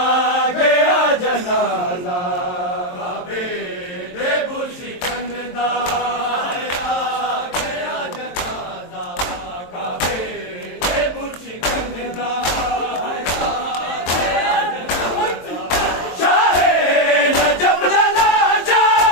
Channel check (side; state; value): right; late; 23 ms